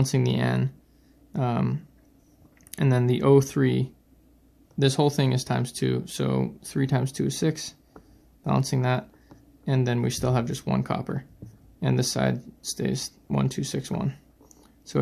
the N. And then the O3, this whole thing is times 2, so 3 times 2 is 6, balancing that, and then we still have just 1 copper, and this side stays 1, 2, 6, 1. So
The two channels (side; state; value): both; identical; correlation 1.00